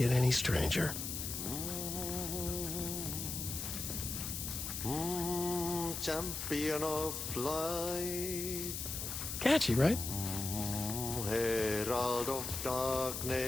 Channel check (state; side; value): noise; left; hiss, 4 dB below the sound